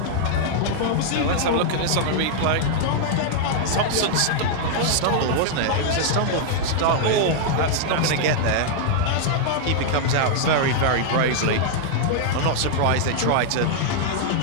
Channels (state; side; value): different; both; correlation -0.01